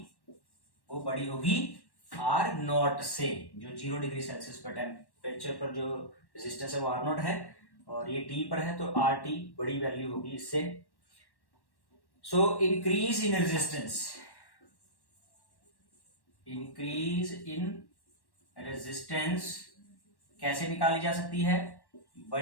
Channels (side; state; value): right; late; 1.1 ms